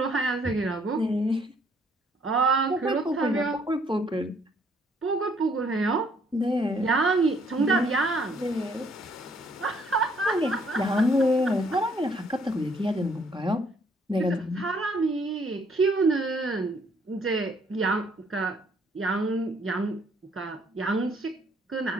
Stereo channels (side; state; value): both; normal; correlation 0.65